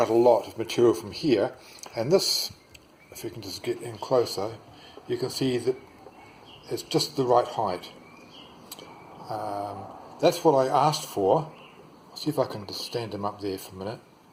a lot of material from here, and this, if you can just get in closer, you can see that it's just the right height. That's what I asked for. I'll see if I can just stand him up there for a minute.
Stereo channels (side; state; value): both; identical; correlation 1.00